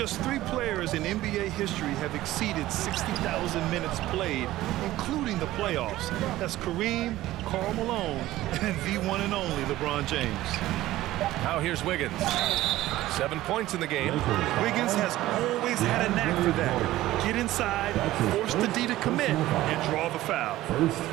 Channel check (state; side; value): quieter; left; 15.8 dB